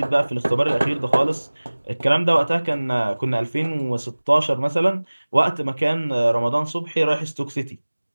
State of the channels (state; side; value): inverted; both; correlation -1.00